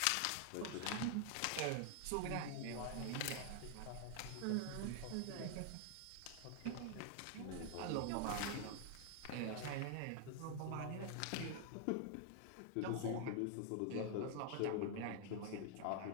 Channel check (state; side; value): different; both; correlation 0.00